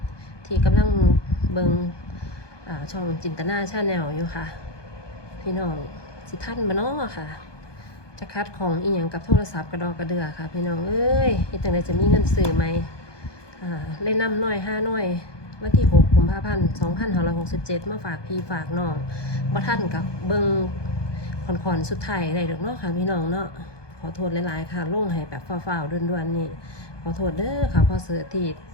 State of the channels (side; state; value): right; late; 1.2 ms